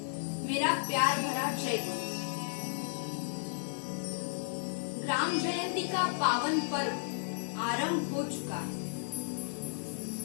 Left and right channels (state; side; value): silent; right; digital silence